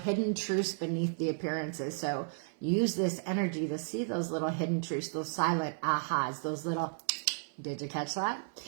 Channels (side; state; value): left; silent; 55 dB below the other